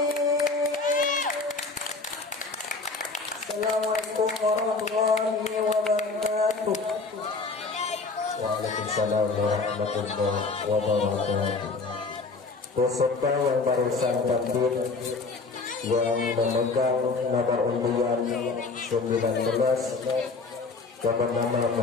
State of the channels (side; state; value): right; quieter; 3.9 dB